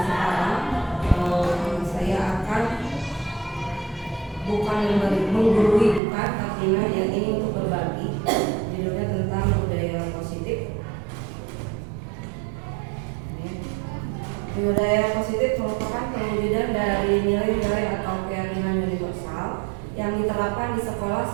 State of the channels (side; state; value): left; drops out; at 6.0 s